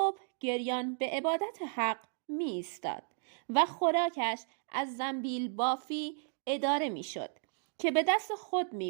گریان به عبادت حق می ایستاد و خوراکش از زنبیل بافی اداره می شد که به دست خود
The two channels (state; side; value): silent; left; 55 dB below the other